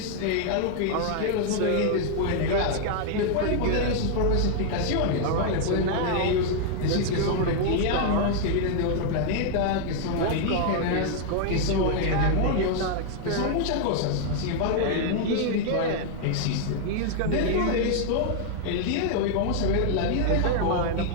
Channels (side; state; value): both; different; correlation 0.00